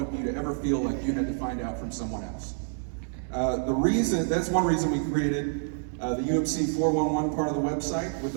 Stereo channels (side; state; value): left; silent; digital silence